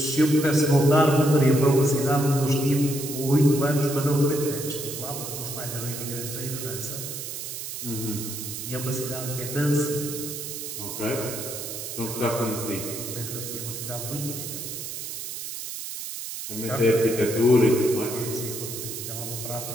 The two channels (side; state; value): right; noise; hiss, 7 dB below the sound